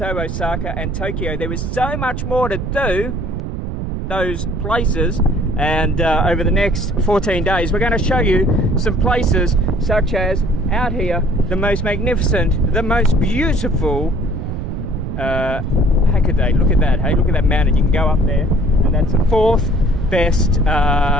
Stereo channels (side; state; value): right; noise; rumble, 4 dB below the sound